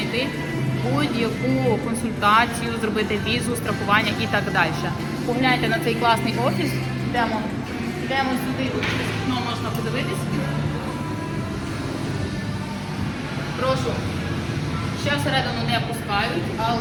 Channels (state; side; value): identical; both; correlation 1.00